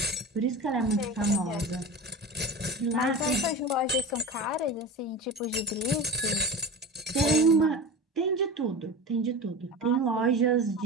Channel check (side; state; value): both; normal; correlation 0.30